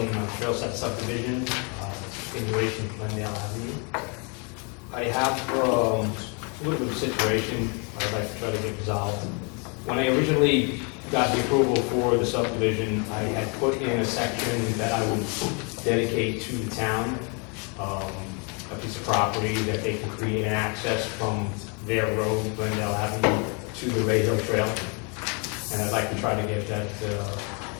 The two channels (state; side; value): quieter; right; 34.7 dB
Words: Sept subdivision, continuation of Glendale Avenue. I have a little bit of a situation I'd like to try to get resolved. When I originally got the approval for the subdivision, I had put in a section that I would dedicate to the town, a piece of property that they can create an access from their road, Glendale Avenue, to the Ray Hill Trail. And I'd like to try to get that,